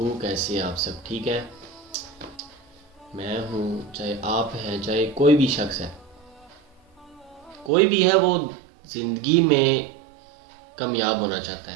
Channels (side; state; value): left; drops out; at 7.7 s